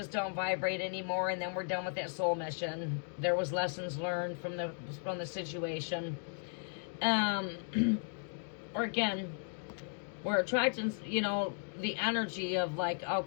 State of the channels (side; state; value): right; silent; 54 dB below the other